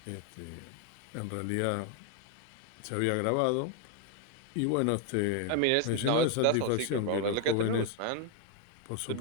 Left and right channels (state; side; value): different; both; correlation 0.01